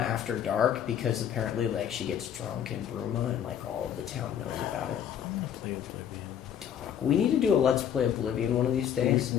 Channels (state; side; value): quieter; right; 9.2 dB